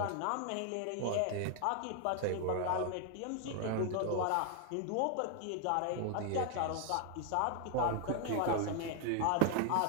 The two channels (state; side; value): different; both; correlation 0.00